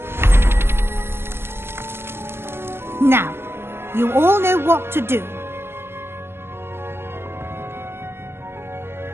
Now, you all know what to do.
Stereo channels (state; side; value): late; left; 0.11 ms